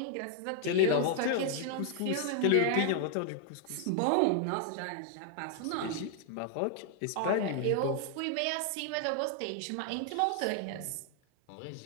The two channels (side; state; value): both; different; correlation 0.00